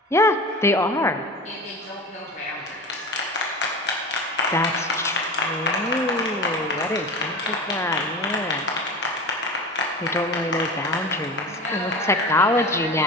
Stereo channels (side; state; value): both; normal; correlation 0.32